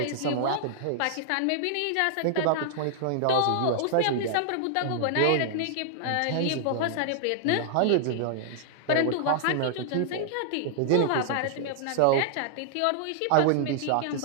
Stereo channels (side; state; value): both; different; correlation -0.01